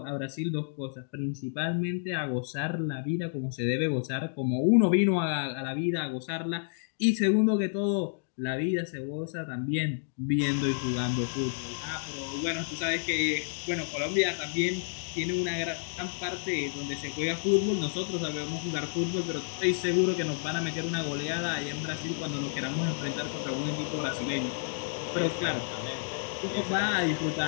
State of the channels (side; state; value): right; silent; digital silence